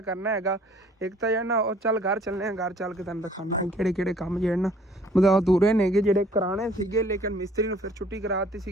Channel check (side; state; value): both; normal; correlation 0.56